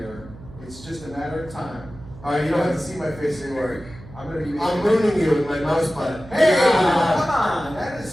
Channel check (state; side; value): noise; right; hum, 18 dB below the sound